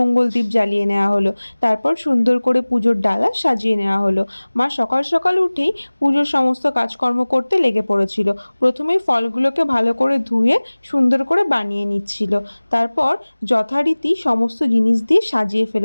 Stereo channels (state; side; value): inverted; both; correlation -1.00